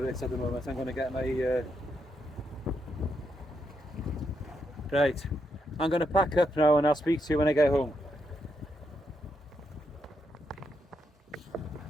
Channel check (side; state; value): both; normal; correlation 0.81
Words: it at the moment. I'm going to get my... Right. I'm going to pack up now and I'll speak to you when I get home.